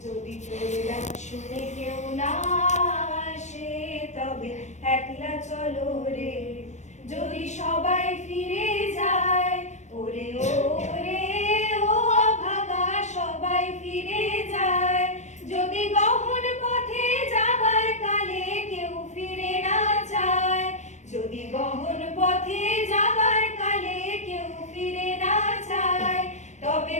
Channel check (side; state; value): right; late; 0.34 ms